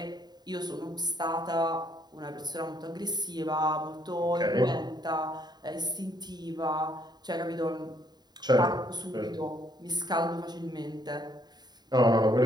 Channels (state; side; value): late; left; 0.20 ms